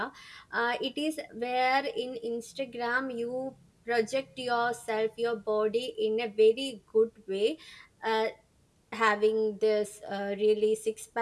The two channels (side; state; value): both; identical; correlation 1.00